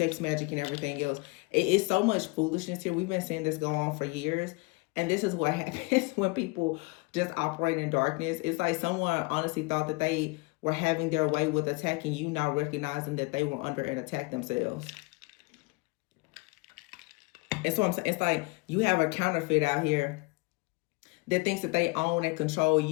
magic and everything else. It's so much foolishness here. We've been seeing this go on for years. And this is what happens when people just operate in darkness. It's like someone honestly thought that they were having their way with attacking you, not recognizing that they were under an attack themselves. And so I'm saying, it's like you have a counterfeit out here that thinks that they own and control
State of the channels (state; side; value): quieter; right; 27.3 dB